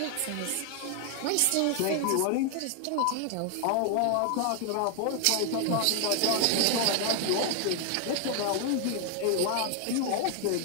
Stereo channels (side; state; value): both; different; correlation 0.00